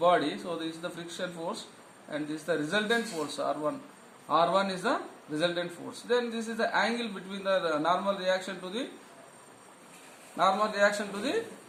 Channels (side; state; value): both; identical; correlation 1.00